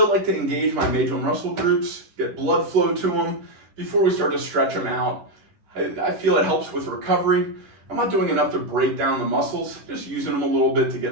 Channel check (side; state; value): left; late; 10 ms